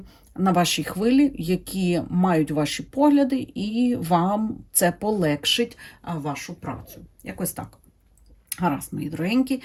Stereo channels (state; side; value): identical; both; correlation 1.00